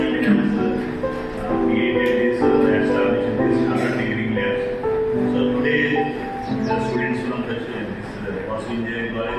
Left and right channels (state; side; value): identical; both; correlation 1.00